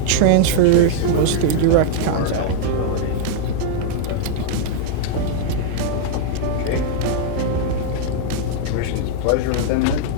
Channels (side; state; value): both; different; correlation 0.00